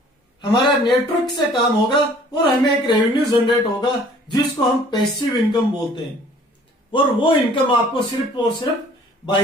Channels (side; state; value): both; normal; correlation 0.54